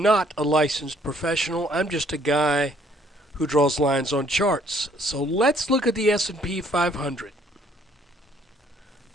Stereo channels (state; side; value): normal; both; correlation 0.63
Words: not a licensed professional. I'm just a guy who draws lines on charts. So let's look at the S&P 500.